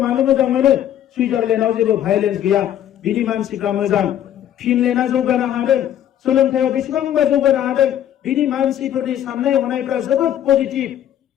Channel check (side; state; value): right; quieter; 10.9 dB